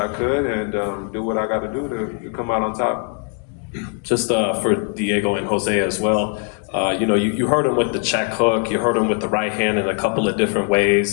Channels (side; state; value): right; quieter; 37.4 dB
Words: could and do what I got to do to come out on top. Just for Diego and Jose as well, you heard him with the check hook, you heard him with the right hand in a couple of different